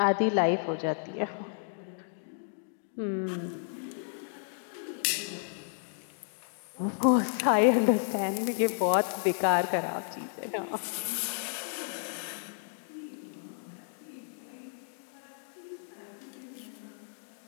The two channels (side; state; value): right; silent; digital silence